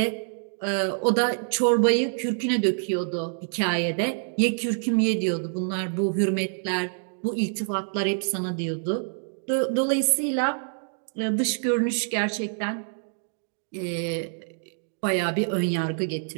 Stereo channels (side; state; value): left; silent; digital silence